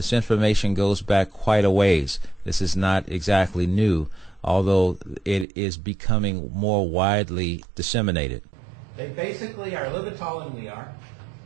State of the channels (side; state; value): left; drops out; at 5.5 s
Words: information goes back quite a ways. This is not exactly new, although it is becoming more widely disseminated. They basically are a little bit taller than we are.